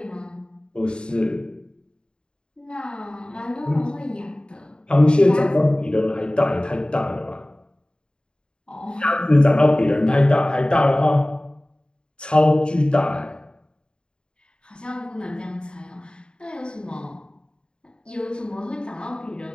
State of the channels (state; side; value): late; right; 0.051 ms